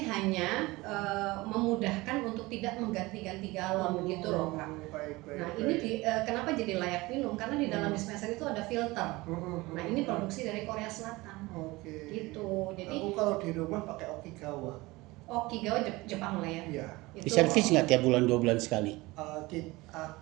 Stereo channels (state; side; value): quieter; left; 21.4 dB